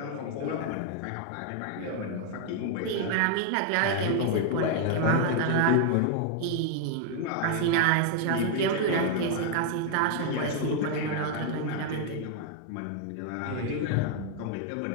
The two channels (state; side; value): different; both; correlation 0.00